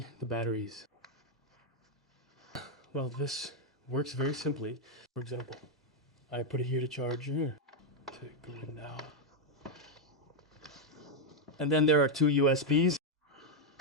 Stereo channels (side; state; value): both; normal; correlation 0.01